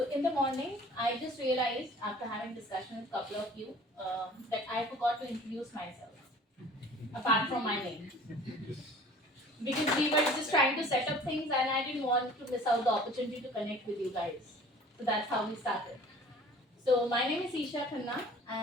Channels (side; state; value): both; normal; correlation 0.48